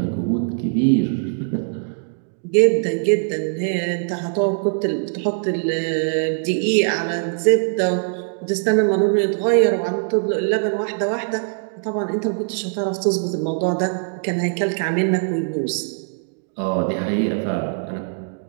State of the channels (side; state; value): left; silent; digital silence